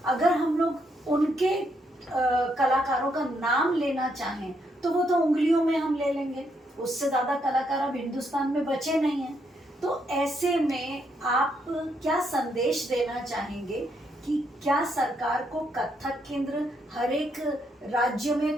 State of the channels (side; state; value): both; normal; correlation 0.76